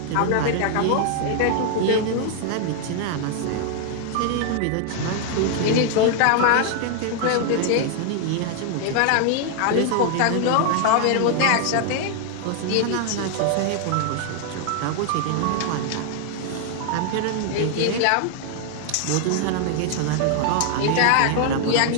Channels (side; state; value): both; different; correlation 0.00